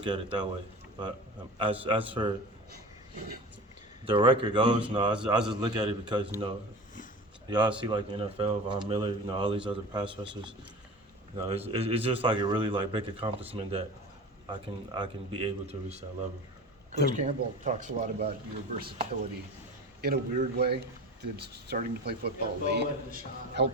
at it that way. But as for the record goes, no, I just look at it because you know y'all see like the NFL, Von Miller, you know, all these other pass rushers. You know, it's just like a really like big accomplishment that I can be able to reach that level. Coach Campbell talks a lot about your versatility. In a weird way, did starting to play football late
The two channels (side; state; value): both; normal; correlation 0.35